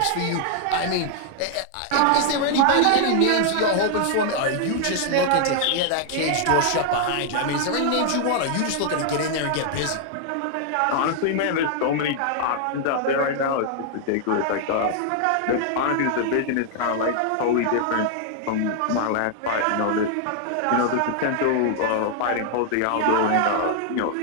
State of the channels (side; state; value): both; different; correlation 0.00